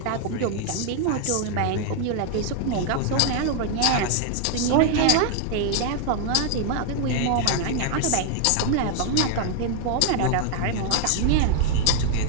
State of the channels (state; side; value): different; both; correlation 0.00